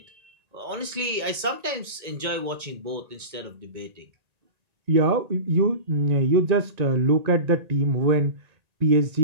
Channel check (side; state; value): left; late; 1.8 ms